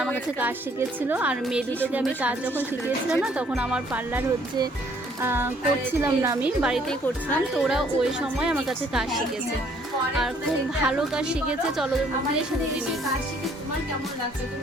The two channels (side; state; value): both; normal; correlation 0.63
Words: আমার কাছে কাজ শিখেছিল। আর মেয়ে দুটোকে আমি কাজ যখন শিখিয়েছিলাম না, তখন আমার পার্লার হচ্ছে করছিলাম না, আমি বাড়িতেই করছিলাম। তো ওরা ওই সময় আমার কাছে কাজ শিখেছে আর খুব ভালো কাজ শিখেছে। চলো দিয়ে শুনে নিই। তোমার কেমন লাগছে? তুমি